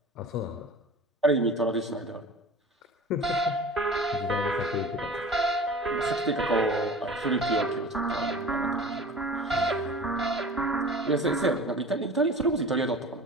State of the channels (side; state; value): both; normal; correlation 0.39